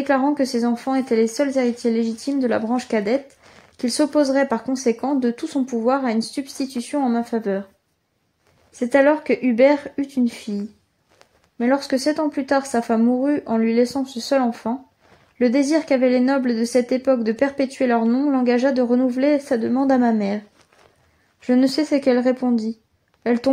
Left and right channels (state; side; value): identical; both; correlation 1.00